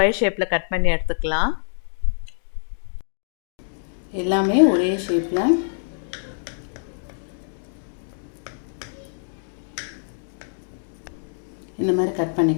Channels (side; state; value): right; silent; digital silence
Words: ஷேப்பில் கட் பண்ணி எடுத்துக்கலாம். எல்லாமே ஒரே ஷேப்பில் இந்த மாதிரி கட்